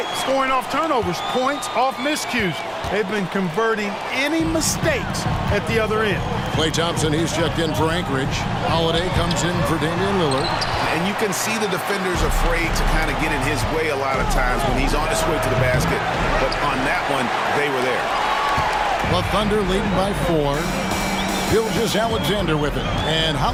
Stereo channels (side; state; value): both; identical; correlation 1.00